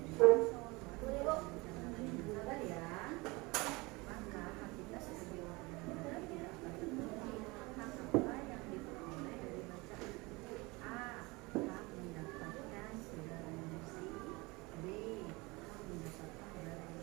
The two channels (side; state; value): left; quieter; 24.5 dB